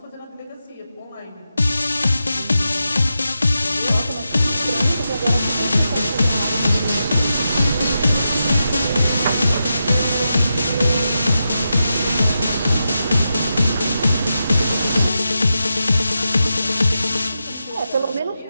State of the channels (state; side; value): inverted; both; correlation -0.88